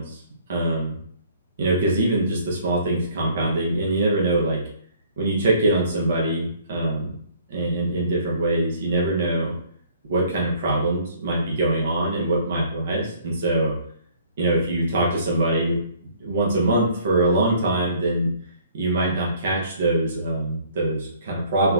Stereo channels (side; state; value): both; inverted; correlation -0.58